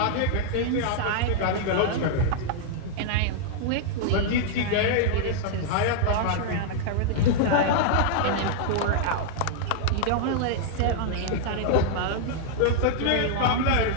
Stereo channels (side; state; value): both; different; correlation -0.01